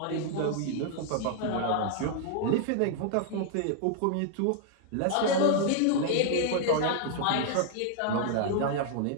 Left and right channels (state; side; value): different; both; correlation 0.00